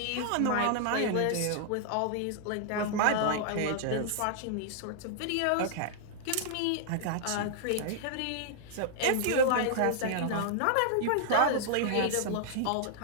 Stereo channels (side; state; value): both; different; correlation -0.01